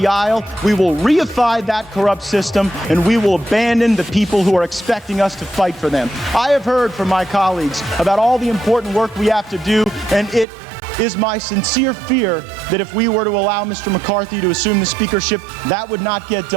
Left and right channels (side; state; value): left; drops out; at 10.5 s